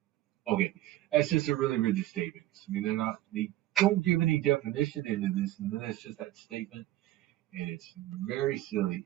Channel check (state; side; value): quieter; left; 15.2 dB